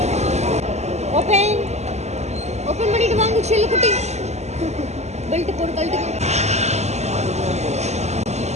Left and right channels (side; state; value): left; late; 0.32 ms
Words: കുട്ടി ബെൽറ്റ് പോട് ബെൽറ്റ്